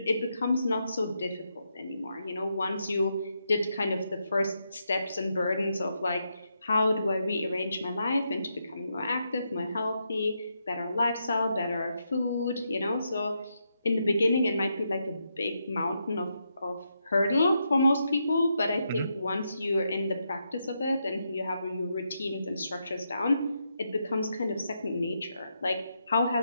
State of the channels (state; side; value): inverted; both; correlation -0.82